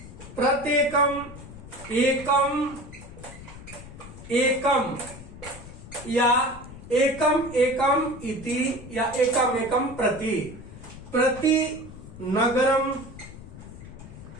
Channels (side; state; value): left; noise; rumble, 15 dB below the sound